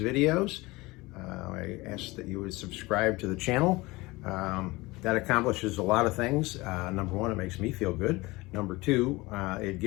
videos, I ask that you would subscribe to the channel. That accomplishes a lot of things. Number one, it makes me feel good. Number two, it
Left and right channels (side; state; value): right; quieter; 21.8 dB